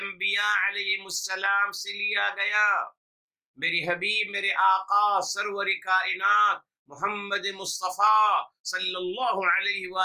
علیہ السلام سے لیا گیا، میری حبیب، میرے آقا سرور کائنات محمد مصطفیٰ صلی اللہ علیہ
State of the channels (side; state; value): both; identical; correlation 1.00